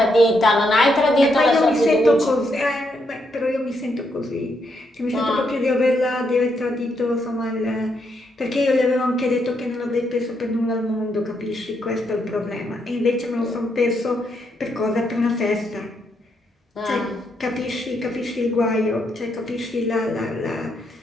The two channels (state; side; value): normal; both; correlation 0.78